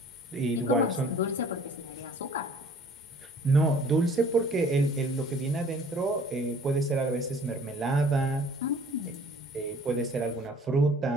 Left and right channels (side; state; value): both; normal; correlation 0.53